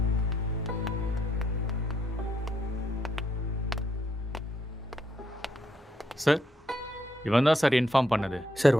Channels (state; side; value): normal; both; correlation 0.76